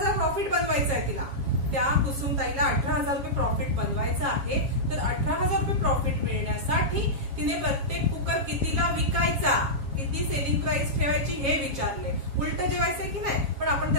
प्रॉफिट बनवायचं आहे. तिला त्या कुसुमताईला 18,000 रुपये प्रॉफिट बनवायचं आहे. तर 18,000 रुपये प्रॉफिट मिळण्यासाठी तिने प्रत्येक कुकर कितीला विकायचा, किती सेलिंग प्राइस ठेवायची हे विचारले. उलट जेवायचंय की नाही, पण आपण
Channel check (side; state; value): left; late; 7.3 ms